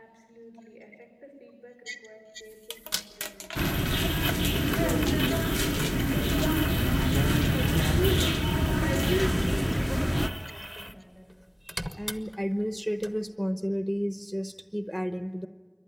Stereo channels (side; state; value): both; identical; correlation 1.00